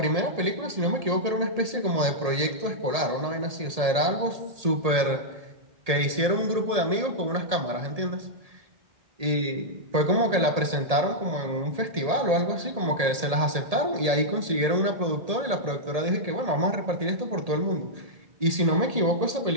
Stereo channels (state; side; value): late; left; 1.8 ms